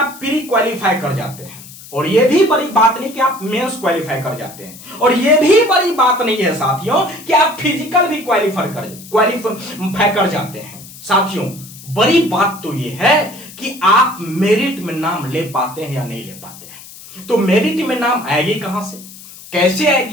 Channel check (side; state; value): left; noise; hiss, 17 dB below the sound